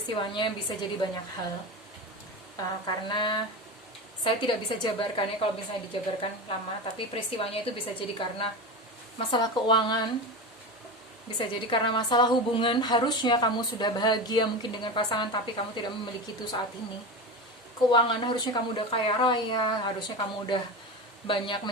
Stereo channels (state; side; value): normal; both; correlation 0.24